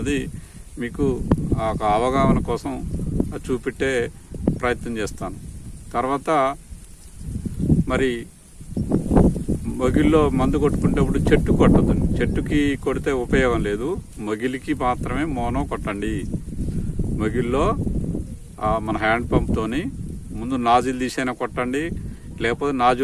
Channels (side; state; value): both; identical; correlation 1.00